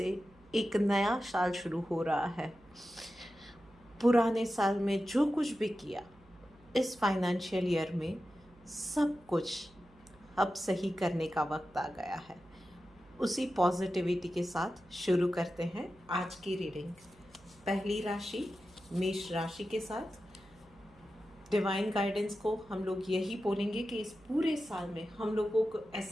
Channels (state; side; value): noise; right; hum, 27 dB below the sound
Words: एक नया साल शुरू हो रहा है। पुराने साल में जो कुछ भी किया इस फाइनेंशियल ईयर में सब कुछ अब सही करने का वक्त आ गया है। उसी पॉजिटिविटी के साथ शुरू करते हैं आज की रीडिंग। पहली राशि मेष राशि के साथ डिवाइन गाइडेंस को हम लोग यही बोलेंगे कि इस पूरे साल में हम लोगों को